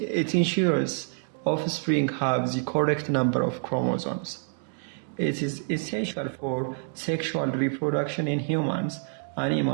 ensures offspring have the correct number of chromosomes. It is essential for sexual reproduction in humans,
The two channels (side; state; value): left; silent; 60 dB below the other